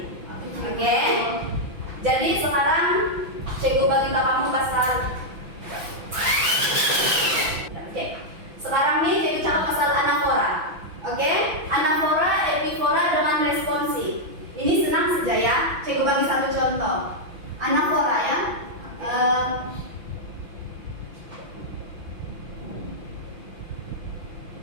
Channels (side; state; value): left; late; 5.9 ms